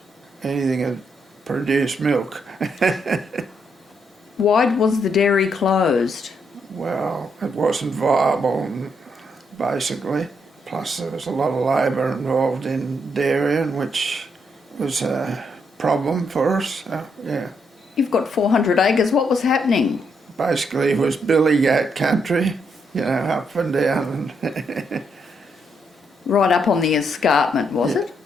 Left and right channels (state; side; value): normal; both; correlation 0.77